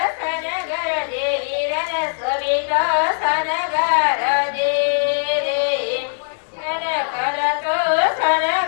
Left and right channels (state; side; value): silent; right; digital silence